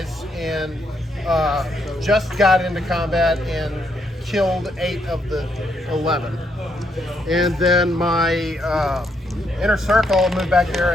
and just got into combat and killed 8 of the 11. And then my inner circle moved back there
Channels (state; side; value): normal; both; correlation 0.76